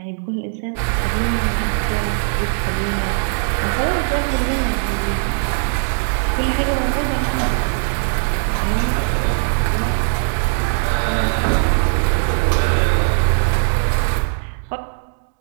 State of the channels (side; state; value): left; silent; digital silence